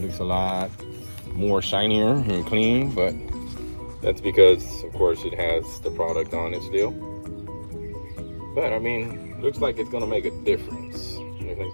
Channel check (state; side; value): inverted; both; correlation -1.00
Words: a lot more shinier and clean, but that's because, of course, it has the product on it still. But I mean, looks like it's gonna make a difference. It's